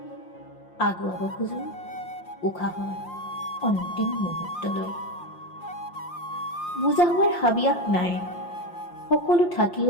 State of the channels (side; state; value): right; late; 5.7 ms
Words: আগুৱাব খোজো উশাহৰ অন্তিম মুহূৰ্তলৈ। বুজা হোৱাৰ হাবিয়াস নাই, সকলো